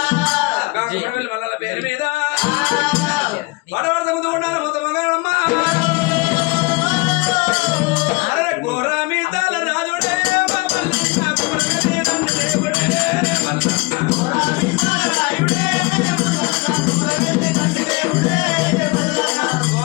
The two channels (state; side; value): quieter; right; 26.1 dB